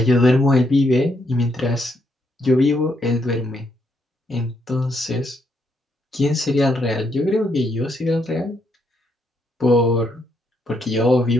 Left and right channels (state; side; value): normal; both; correlation 0.76